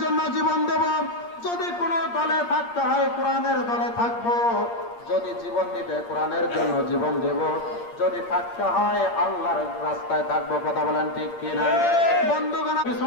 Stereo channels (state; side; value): late; right; 8.6 ms